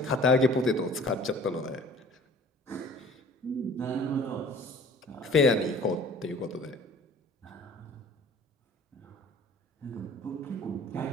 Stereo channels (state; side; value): normal; both; correlation 0.47